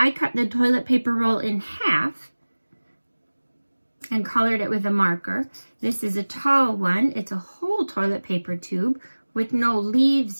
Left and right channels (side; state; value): both; inverted; correlation -1.00